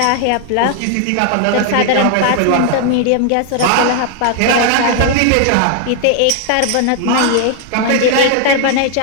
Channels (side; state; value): both; different; correlation 0.00